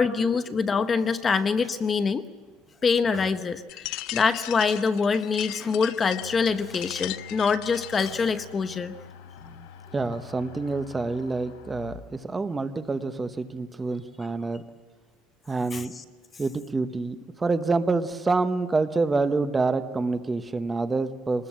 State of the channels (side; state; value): both; normal; correlation 0.83